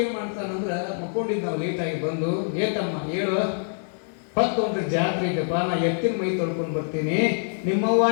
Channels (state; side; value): silent; right; 62 dB below the other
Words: ಏನು ಮಾಡ್ತಾನಂದ್ರೆ, ಮುಕ್ಕೊಂಡಿದ್ದು ನಾವು ಲೇಟಾಗಿ ಬಂದು, ಏತಮ್ಮ ಹೇಳು, ಹೊತ್ತೊಂದ್ರೆ ಜಾತ್ರೆ ಇದೆಪ್ಪ, ನಾ ಎತ್ತಿನ ಮೈ ತೊಳ್ಕೊಂಡು ಬರ್ತೀನಿ. ನಿಮ್ಮವ್ವ